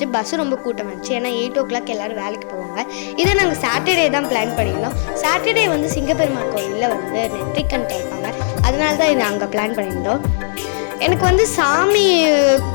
பஸ்ஸு ரொம்ப கூட்டம் வந்துச்சு. ஏன்னா 8 o'clock எல்லோரும் வேலைக்கு போவாங்க. இதை நாங்கள் சாட்டர்டே தான் பிளான் பண்ணியிருந்தோம். சாட்டர்டே வந்து சிங்கப்பெருமாள் கோவிலில் வந்து நெற்றிக்கண் திறப்பாங்க. அதனால தான் இதை அங்கே பிளான் பண்ணியிருந்தோம். எனக்கு வந்து சாமி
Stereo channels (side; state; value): right; silent; 68 dB below the other